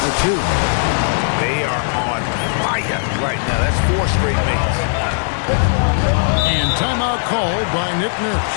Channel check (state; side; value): silent; right; 68 dB below the other